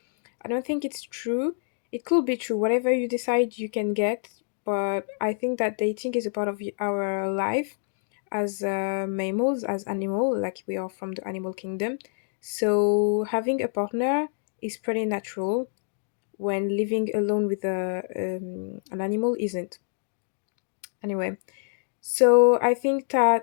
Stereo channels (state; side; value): silent; right; digital silence